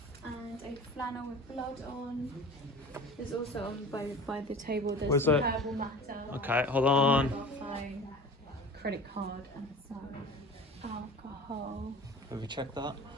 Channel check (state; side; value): normal; both; correlation 0.38